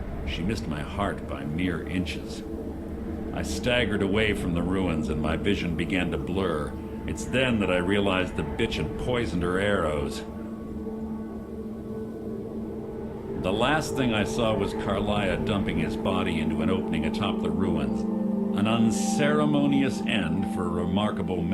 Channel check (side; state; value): both; identical; correlation 1.00